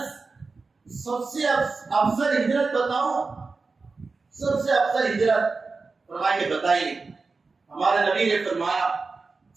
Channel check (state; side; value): quieter; left; 4.2 dB